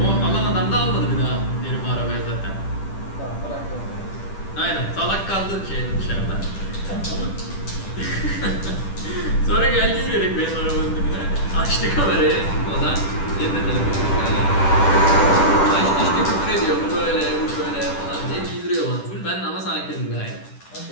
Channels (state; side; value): late; right; 10 ms